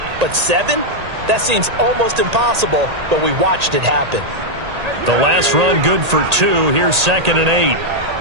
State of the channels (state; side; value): late; left; 1.8 ms